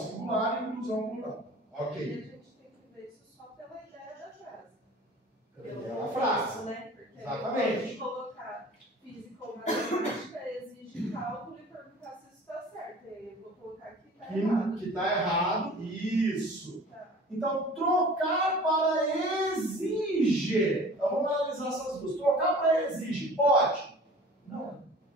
inclusão plural. E a Ok. gente tem que ver isso só pela ideia da frase. É a frase. Né? Porque Exatamente. se colocar física ou matemática exige cálculo e perguntar se isso está certo. E aí eu vou colocar que está errado. Que está errado. Isso. Tá. Então, trocar para exige. Então, vamos analisar essas duas. Trocar para exige. Pode? Não.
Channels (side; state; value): both; normal; correlation 0.44